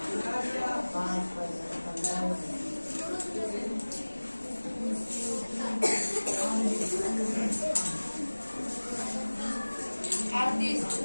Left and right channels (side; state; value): both; inverted; correlation -1.00